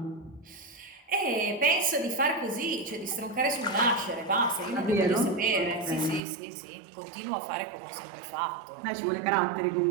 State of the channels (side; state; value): left; drops out; at 6.2 s